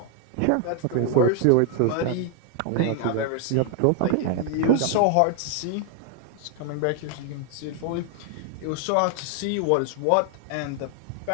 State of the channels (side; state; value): both; different; correlation 0.00